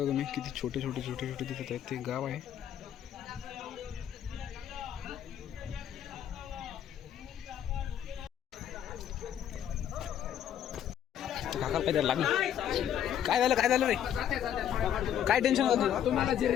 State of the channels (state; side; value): quieter; right; 10.0 dB